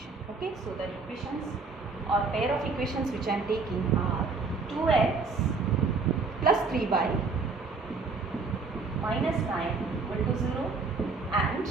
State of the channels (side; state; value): left; quieter; 4.2 dB